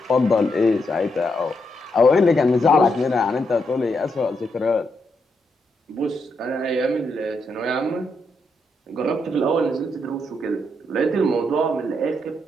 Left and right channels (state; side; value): normal; both; correlation 0.80